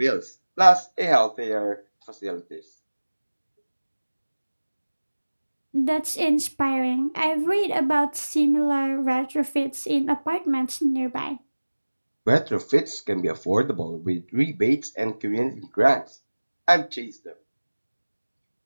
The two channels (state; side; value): inverted; both; correlation -1.00